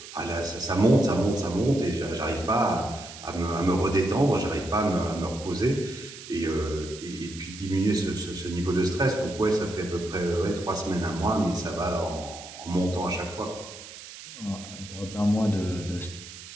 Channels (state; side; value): noise; right; hiss, 14 dB below the sound